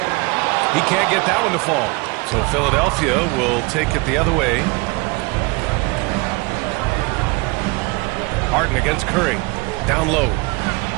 He can't get that one to fall. So Philadelphia will take it the other way. Harden against Curry. Down low.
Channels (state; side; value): quieter; left; 25.8 dB